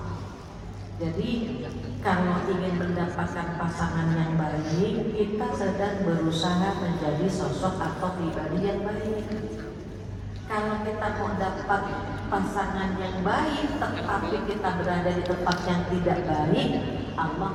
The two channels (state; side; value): identical; both; correlation 1.00